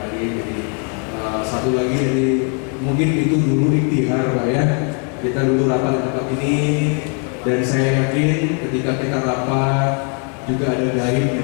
Ali. Jadi satu lagi, jadi mungkin itu dulu ikhtiar Pak ya. Kita dulu rapat di tempat ini, dan saya yakin ketika kita rapat juga ada gaib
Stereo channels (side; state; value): right; quieter; 39.4 dB